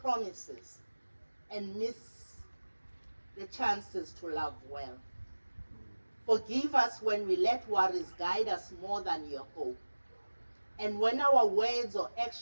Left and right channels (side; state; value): both; inverted; correlation -1.00